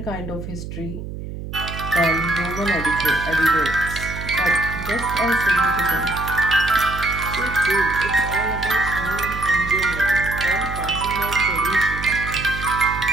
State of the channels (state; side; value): noise; right; hum, 9 dB below the sound